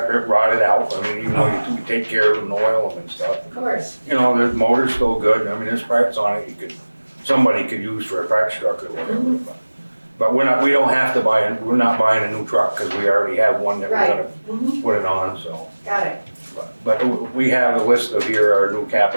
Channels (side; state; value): both; inverted; correlation -1.00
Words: rotted out. I mean, even though you take care of them and oil them and stuff. Of course. You know, the motor's still good. I mean, there's parts on it somebody could use for a parts truck or whatever. But we're not buying a new truck because we already have one that we're gonna put it on, so. Got it. But we have a list of here, our new